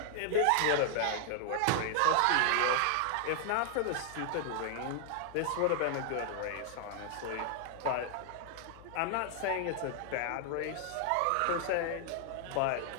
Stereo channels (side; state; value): both; different; correlation 0.00